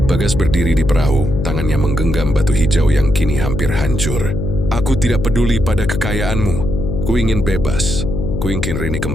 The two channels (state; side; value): noise; left; hum, 3 dB below the sound